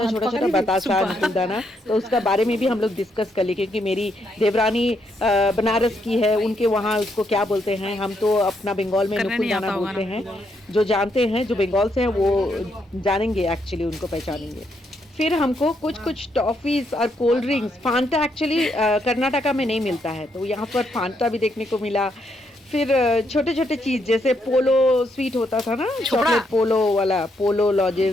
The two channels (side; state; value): both; normal; correlation 0.77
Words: है, छोटा छोटा बतासा नुकुलदाना। तो उसका बारे में भी हम लोग डिस्कस कर लिए, क्योंकि मेरी देवरानी बनारस की है, उनके वहाँ उसको क्या बोलते हैं, हम तो अपना बंगाल में नुकुलदाना बोलते हैं। जो जानते हैं, जो बंगाल से हैं, वो जानेंगे, एक्चुअली उनको पहचानेंगे। फिर हमको कुछ टॉफीज और cold drinks, Phanta actually Karnataka में नहीं मिलता है, तो यहाँ पर फांटा भी देखने को मिला। फिर छोटे छोटे चीज जैसे पोलो स्वीट होता था ना, चॉकलेट पोलो वाला, Polo